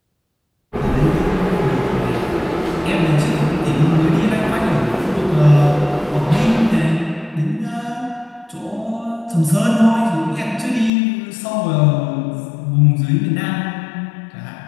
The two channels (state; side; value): drops out; right; at 10.9 s